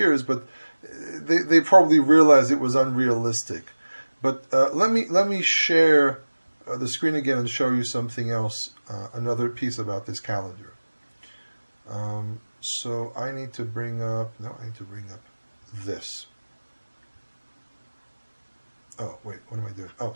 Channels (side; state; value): both; inverted; correlation -1.00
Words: but they probably realized it was unrealistic. But let me share the screen again and show you something else, another piece about this calendar. So I need to bring up this. Oh, wait, what am I doing? Oh,